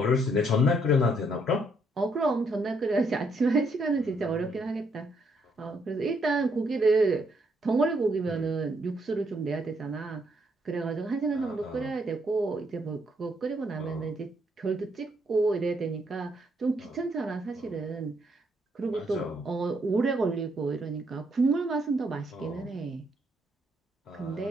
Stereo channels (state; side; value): normal; both; correlation 0.73